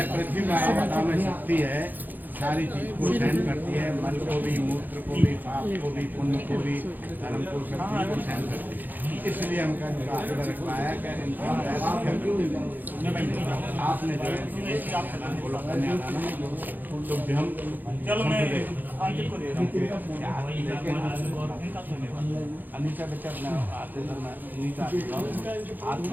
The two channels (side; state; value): left; late; 0.087 ms